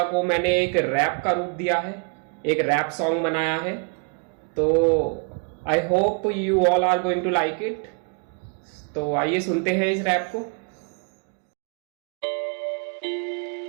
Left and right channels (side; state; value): left; quieter; 39.8 dB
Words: को मैंने एक रैप का रूप दिया है, एक रैप सॉन्ग बनाया है। तो I hope you all are going to like it. तो आइए सुनते हैं इस रैप को।